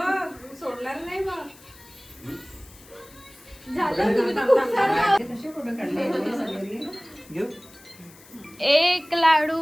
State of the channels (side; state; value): left; noise; hiss, 23 dB below the sound